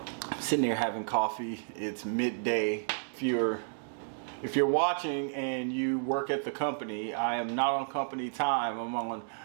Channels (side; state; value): left; silent; digital silence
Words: sitting there having coffee. It's midday. If you're watching and you work at the company, I am not on company time. I'm on